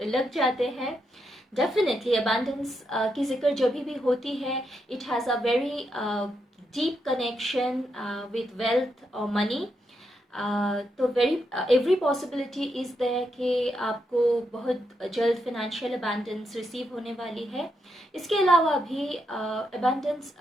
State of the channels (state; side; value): normal; both; correlation 0.82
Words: लग जाते हैं। डेफिनेटली अबांडेंस की जिक्र जब भी होती है, it has a very deep connection with wealth और मनी। तो एवरी पॉसिबिलिटी इज़ देयर कि आपको बहुत जल्द फिनेंशियल अबंडेंस रिसीव होने वाली है। इसके अलावा भी अबंडेंस